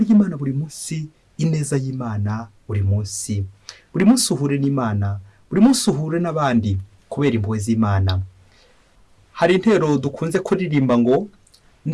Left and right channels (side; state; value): both; identical; correlation 1.00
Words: buri munsi, ineza y'Imana buri munsi. Buri munsi uhure n'Imana, buri munsi uhure n'abandi kubera impuhwe z'Imana. Hari intero dukunze kuririmba ngo,